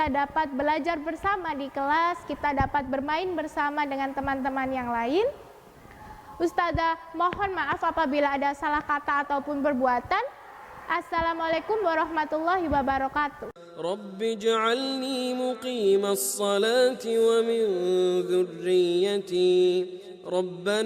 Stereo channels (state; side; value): identical; both; correlation 1.00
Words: dapat belajar bersama di kelas, kita dapat bermain bersama dengan teman-teman yang lain. Ustazah mohon maaf apabila ada salah kata ataupun perbuatan. Assalamualaikum warahmatullahi wabarakatuh. Rabbi ij'alni muqimas salati wa min dhurriyyati